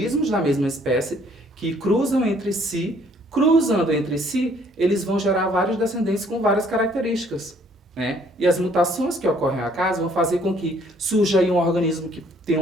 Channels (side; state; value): both; normal; correlation 0.62